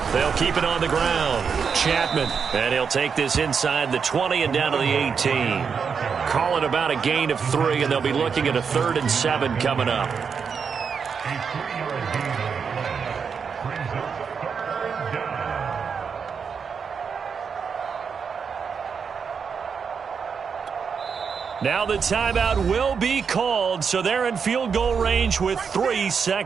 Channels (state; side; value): quieter; left; 6.2 dB